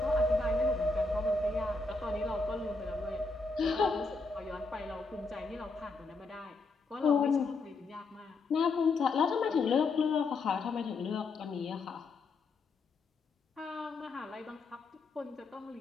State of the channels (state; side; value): quieter; right; 3.8 dB